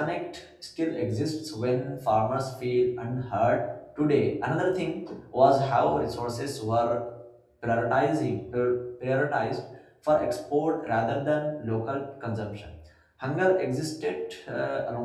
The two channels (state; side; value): identical; both; correlation 1.00